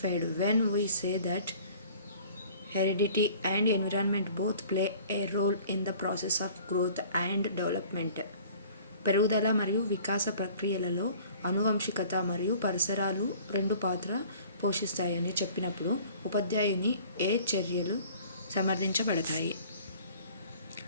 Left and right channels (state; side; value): inverted; both; correlation -0.49